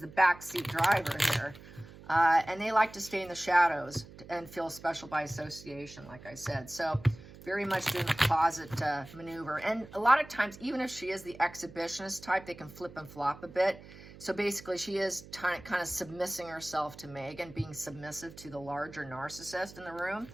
the backseat driver here. And they like to stay in the shadows and feel special by association, like I said. So very much doing the closet maneuver. And a lot of times, even if she is the exhibitionist type, they can flip and flop a bit. So basically, she is kind of submissing herself to Meghan, being submissive to the larger narcissist in the room.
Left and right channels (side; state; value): right; noise; hum, 18 dB below the sound